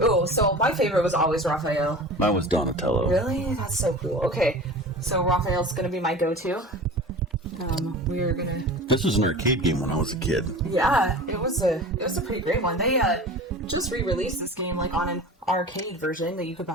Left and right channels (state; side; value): normal; both; correlation 0.36